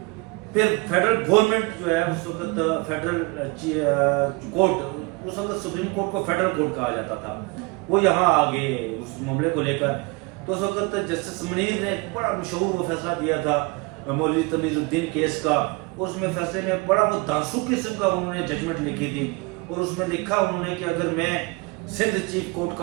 फिर फेडरल गवर्नमेंट जो है उस वक्त फेडरल कोर्ट, उस वक्त सुप्रीम कोर्ट को फेडरल कोर्ट कहा जाता था, वो यहाँ आ गए उस मामले को लेकर। तो उस वक्त जस्टिस मुनीर ने बड़ा मशहूर वो फैसला दिया था मौलवी तमीज़ुद्दीन केस का। उसमें फैसले में बड़ा वो दांसू किस्म का उन्होंने जजमेंट लिखी थी और उसमें लिखा उन्होंने कि अगर मैं सिंध चीफ कोर्ट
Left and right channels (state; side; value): quieter; left; 26.6 dB